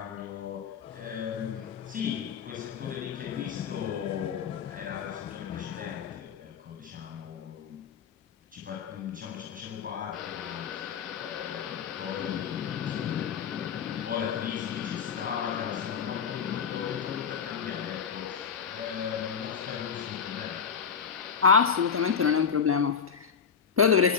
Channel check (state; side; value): quieter; right; 6.7 dB